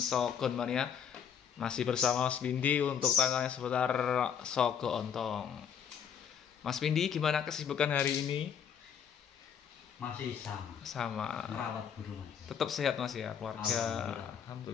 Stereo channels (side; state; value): right; quieter; 7.9 dB